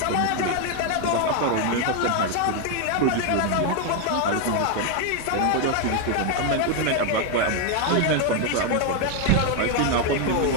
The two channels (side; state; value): both; different; correlation 0.01